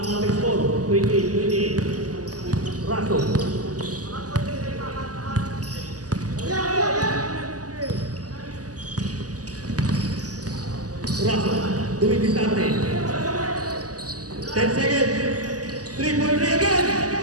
ating score, 28. Raso. Doing this time. 10 seconds. 3-point again.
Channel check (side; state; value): left; late; 0.67 ms